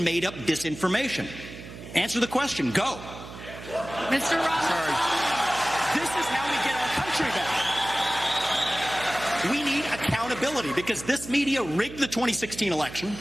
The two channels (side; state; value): right; noise; hum, 13 dB below the sound